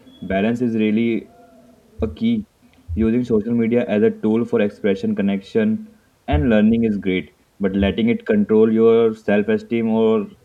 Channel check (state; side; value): identical; both; correlation 1.00